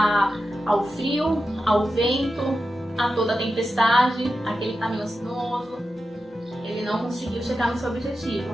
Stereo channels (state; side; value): normal; both; correlation 0.91